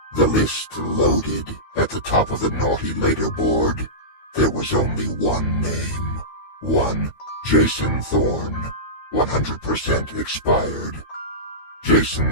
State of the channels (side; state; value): right; late; 12 ms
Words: The list loaded. At the top of the naughty leaderboard, there was only one name. One Jason Thorne, 100% expired.